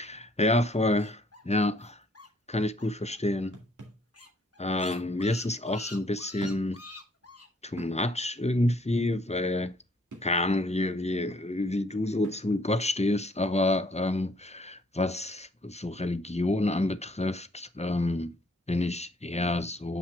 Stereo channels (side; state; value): both; normal; correlation 0.64